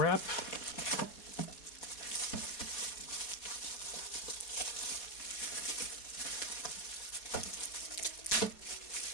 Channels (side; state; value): right; late; 4.1 ms